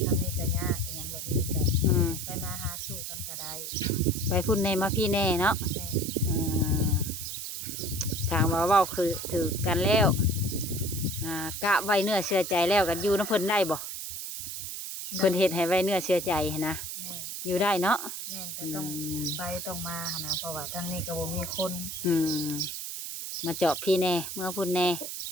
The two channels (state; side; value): noise; right; hiss, 6 dB below the sound